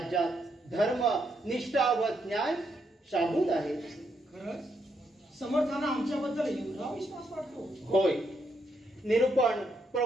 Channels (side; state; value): both; normal; correlation 0.78